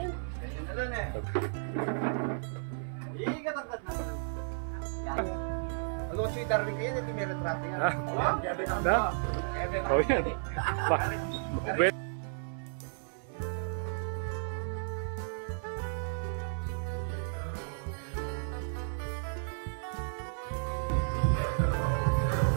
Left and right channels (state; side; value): silent; left; 56 dB below the other